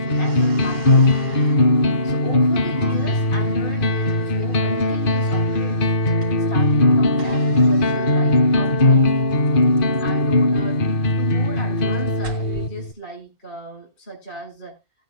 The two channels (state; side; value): late; right; 2.5 ms